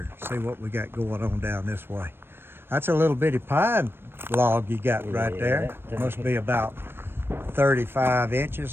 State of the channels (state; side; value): late; left; 0.11 ms